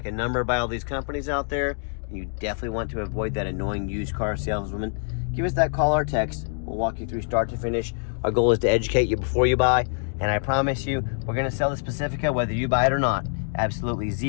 a number by all these companies out there, and you definitely want to avoid that annoying used car saleswoman, give us that call or text. We'll walk you through start to finish. Our goal is to educate you before you buy, and I promise you, we're going to sell this Pacifica whether you buy it or not. Absolutely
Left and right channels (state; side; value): silent; right; 62 dB below the other